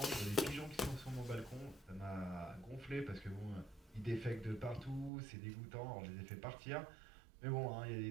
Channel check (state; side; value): drops out; left; at 5.1 s